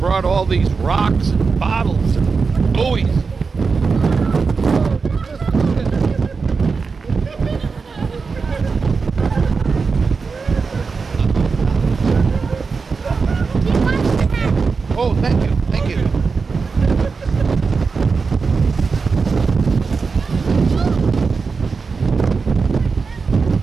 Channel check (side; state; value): left; quieter; 4.8 dB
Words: all these rocks and bottles and buoys. Oh, thank you.